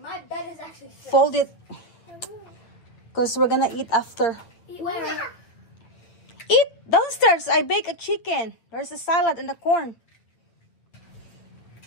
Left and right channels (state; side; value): late; right; 8.7 ms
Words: My bed is actually sick. Fold it because we're gonna eat after. Eat where? Eat downstairs. I bake a chicken. There's a salad and the corn.